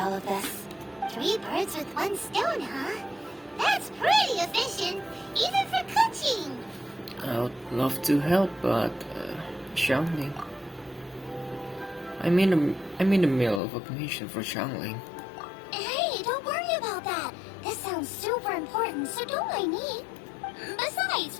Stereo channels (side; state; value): right; drops out; at 13.6 s